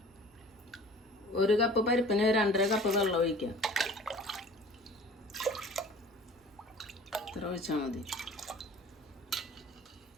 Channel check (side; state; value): both; normal; correlation 0.45